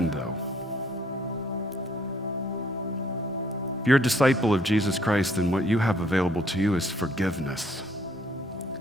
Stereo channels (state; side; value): normal; both; correlation 0.64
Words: though. If you're a disciple of Jesus Christ, then what you have available to you is forgiveness.